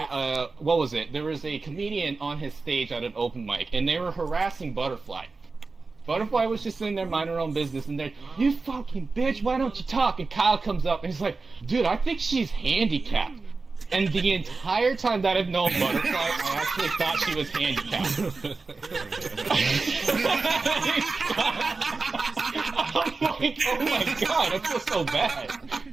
what was it? There was a comedian on his stage at an open mic, and they were harassing Butterfly. Butterfly was just sitting there minding her own business, and then, you fucking bitch, why don't you talk? And Kyle comes up and he's like, dude, I think she's handicapped. And the entire time that I've known Butterfly, I actually thought she was handicapped. I'm like, oh my god, I feel so bad.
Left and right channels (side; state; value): left; quieter; 4.0 dB